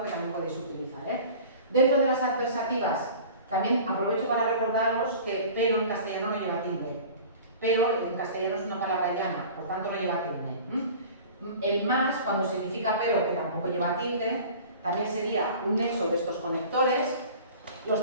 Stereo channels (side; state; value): both; inverted; correlation -0.41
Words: que también podéis utilizar. Dentro de las adversativas, también aprovecho para recordaros que pero en castellano no lleva tilde. Pero en castellano es una palabra llana, por tanto no lleva tilde. El más, cuando significa pero, que tampoco lleva tilde, también sería un nexo de estos conectores. Los